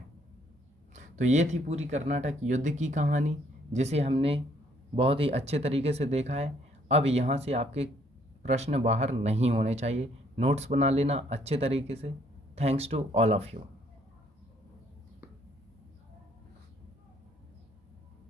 तो ये थी पूरी कर्नाटक युद्ध की कहानी, जिसे हमने बहुत ही अच्छे तरीके से देखा है। अब यहाँ से आपके प्रश्न बाहर नहीं होने चाहिए। नोट्स बना लेना अच्छे तरीके से। Thanks to all of you.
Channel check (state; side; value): normal; both; correlation 0.66